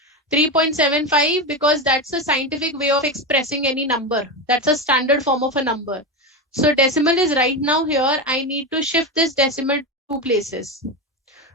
3.75 because that's a scientific way of expressing any number. That's a standard form of a number. So decimal is right now here. I need to shift this decimal 2 places.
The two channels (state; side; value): normal; both; correlation 0.16